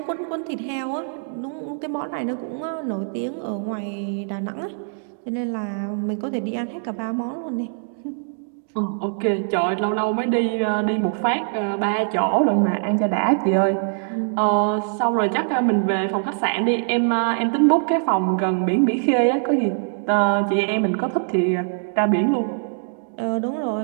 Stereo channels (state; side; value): silent; left; digital silence